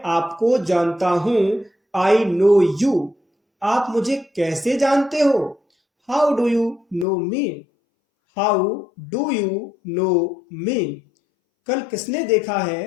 आपको जानता हूं, आई नो यू. आप मुझे कैसे जानते हो, how do you know me? How do you know me? कल किसने देखा है,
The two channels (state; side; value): drops out; right; at 7.1 s